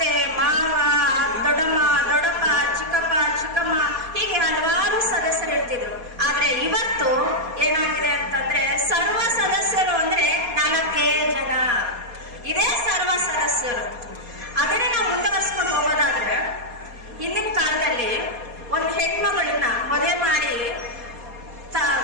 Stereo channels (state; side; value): late; left; 4.2 ms